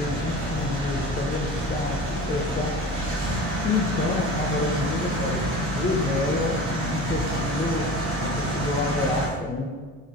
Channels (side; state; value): both; normal; correlation 0.36